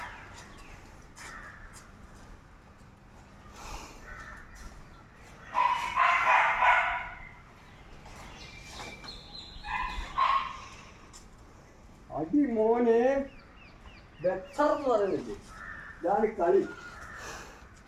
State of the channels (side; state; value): both; identical; correlation 1.00